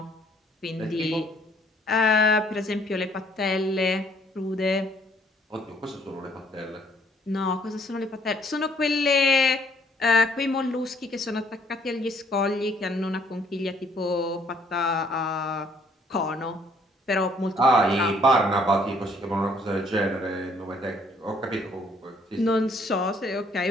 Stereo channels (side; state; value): both; normal; correlation 0.64